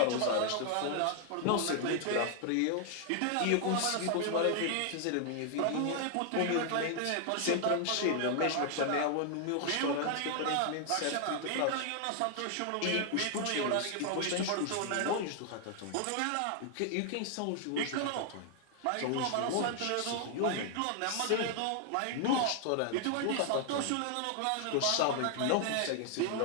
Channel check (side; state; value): both; different; correlation 0.00